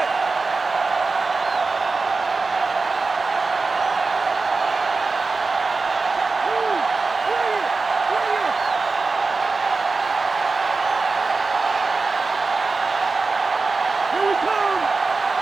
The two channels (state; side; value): quieter; left; 4.0 dB